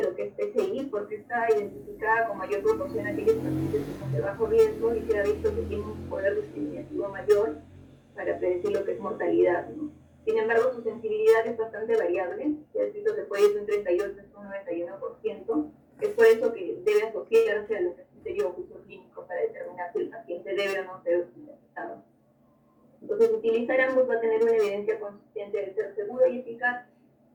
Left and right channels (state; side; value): identical; both; correlation 1.00